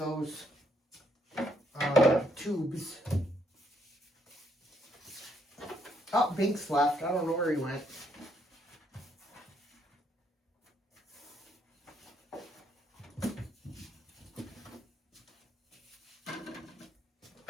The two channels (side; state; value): both; normal; correlation 0.72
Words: tubes. Oh, Binks left. I don't know where he went.